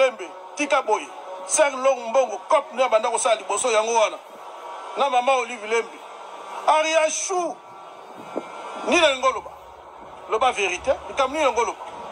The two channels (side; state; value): both; identical; correlation 1.00